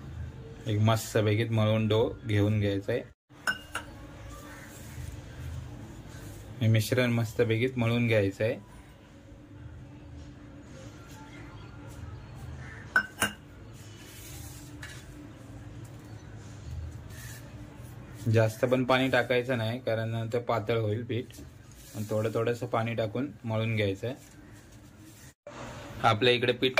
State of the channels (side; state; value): both; identical; correlation 1.00